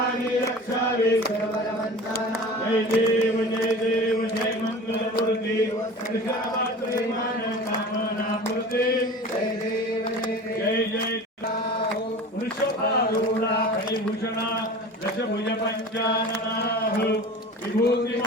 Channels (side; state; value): both; normal; correlation 0.38